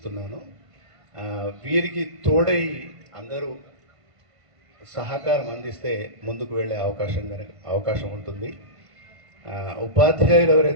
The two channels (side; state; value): left; late; 1.5 ms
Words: వీరికి తోడై అందరూ సహకారం అందిస్తే ముందుకు వెళ్ళే అవకాశం ఉంటుంది. ఉపాధ్యాయులు